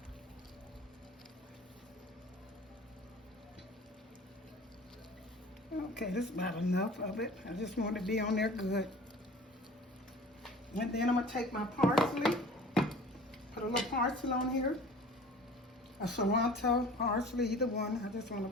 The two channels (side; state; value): both; normal; correlation 0.44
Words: Okay, this is about enough of it. I just want it to be on there good. And then I'm going to take my parsley, put a little parsley on here, a cilantro, parsley, either one. I just